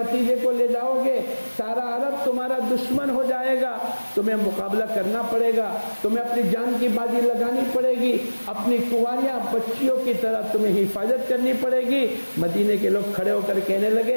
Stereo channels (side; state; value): both; inverted; correlation -1.00